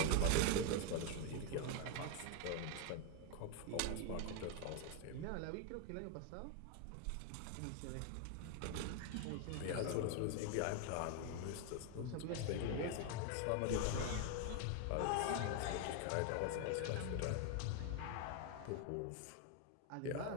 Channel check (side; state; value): both; different; correlation 0.01